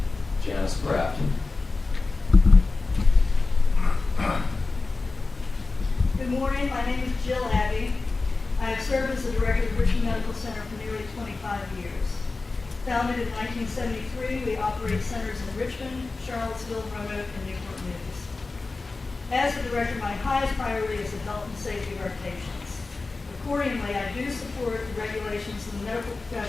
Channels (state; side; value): quieter; right; 3.7 dB